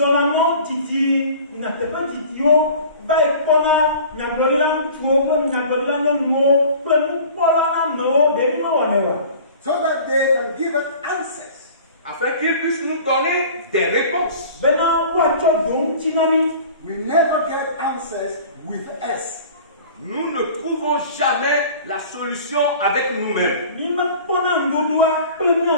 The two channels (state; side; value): inverted; both; correlation -0.44